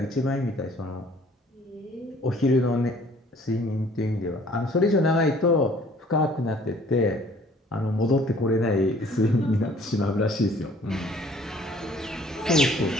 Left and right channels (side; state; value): both; normal; correlation 0.56